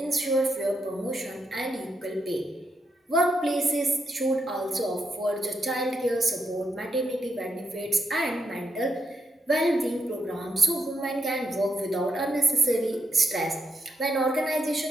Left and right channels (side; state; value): both; normal; correlation 0.80